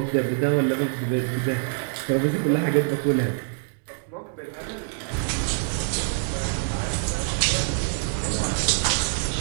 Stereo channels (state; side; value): silent; left; digital silence